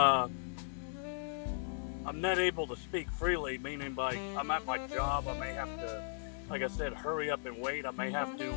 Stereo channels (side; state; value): right; silent; digital silence